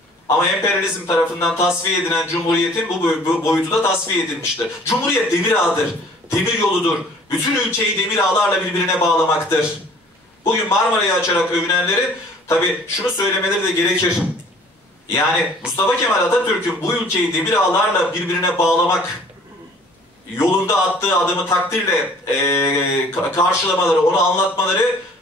Ama emperyalizm tarafından tasfiye edilen Cumhuriyet'in bu boyutu da tasfiye edilmiştir. Cumhuriyet demir ağıdır, demir yoludur. Bütün ülkeyi demir ağlarla birbirine bağlamaktır. Bugün Marmara'yı açarak övünenlerin tabii şunu söylemeleri de gerekir. Yani Mustafa Kemal Atatürk'ün bu ülkeyi demir ağlarla birbirine bağlamak yolunda attığı adımı takdirle karşılamaları, onu anlatmaları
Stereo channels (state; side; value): normal; both; correlation 0.53